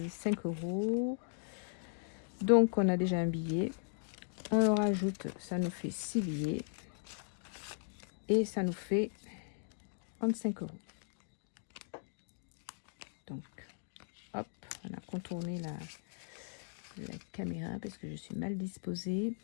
€. Donc, on a déjà un billet. On rajoute, ça nous fait 6 billets. Et ça nous fait 35 €. Donc, hop, on a contourné la caméra parce que je suis mal disposée.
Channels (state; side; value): silent; right; digital silence